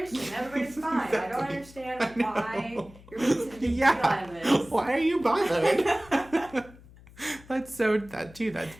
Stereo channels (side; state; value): left; noise; hum, 22 dB below the sound